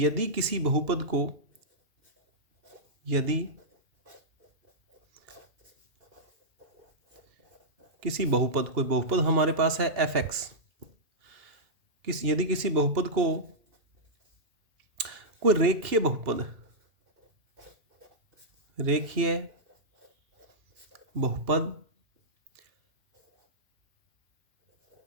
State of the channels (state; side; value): late; left; 2.8 ms